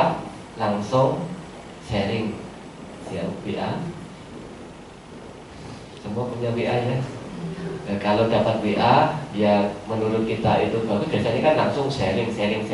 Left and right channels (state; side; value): identical; both; correlation 1.00